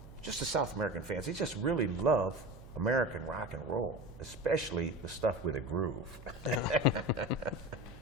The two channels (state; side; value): noise; right; hum, 17 dB below the sound